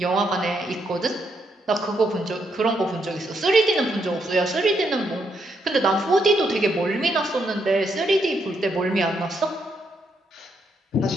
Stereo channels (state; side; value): normal; both; correlation 0.77